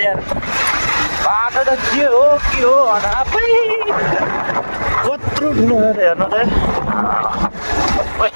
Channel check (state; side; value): inverted; both; correlation -1.00